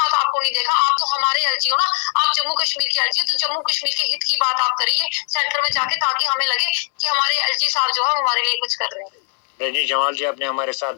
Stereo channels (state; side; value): silent; right; 66 dB below the other